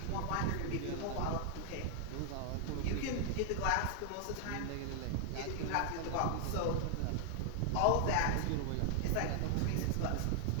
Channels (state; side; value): different; both; correlation 0.00